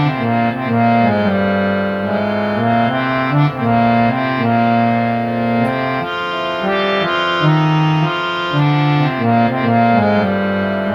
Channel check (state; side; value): identical; both; correlation 1.00